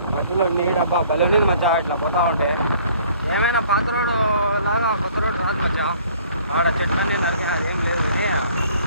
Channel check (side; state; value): both; inverted; correlation -0.56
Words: మధ్యలో నీడబ్బా భలే ఉన్నది మచ్చా. ఇట్లా పోతా ఉంటే ఏమైనా పాత రోడ్డు లాగా కొత్త రోడ్డు రాదు మచ్చా. ఆడ చెట్లన్నీ నరికి అదేం లేదు కానీ